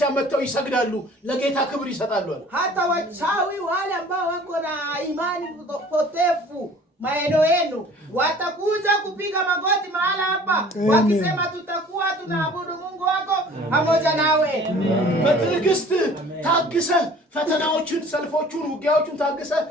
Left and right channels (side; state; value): both; normal; correlation 0.49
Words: መተው ይሰግዳሉ ለጌታ ክብር ይሰጣሉ hata wachawi wale ambao wako na imani potefu maeneo yenu watakuja kupiga magoti mahala hapa wakisema tutakuwa tunaabudu Mungu wako pamoja nawe በትዕግስት ታግሰ ፈተናዎችን ሰልፎቹን ውጊያዎቹን ታግሰ